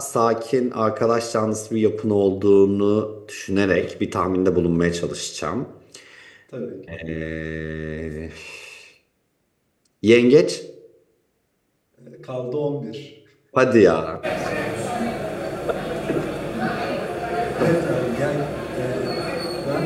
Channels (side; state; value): both; identical; correlation 1.00